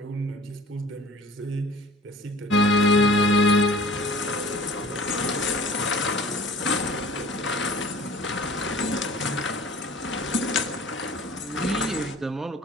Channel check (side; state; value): both; normal; correlation 0.46